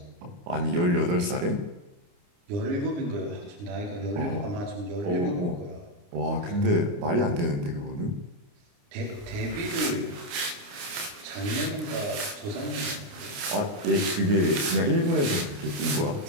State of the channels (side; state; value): left; late; 29 ms